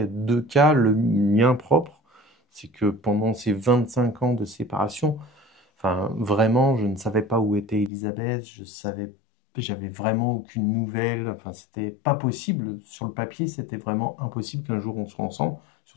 2 cas. Le mien propre, c'est que pendant ces 25 ans de séparation, enfin vraiment, je ne savais pas où était Elisabeth, j'avais vraiment aucune nouvelle. Enfin, c'était pas possible. Sur le papier, c'était vraiment impossible qu'un jour on soit ensemble,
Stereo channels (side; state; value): right; drops out; at 7.9 s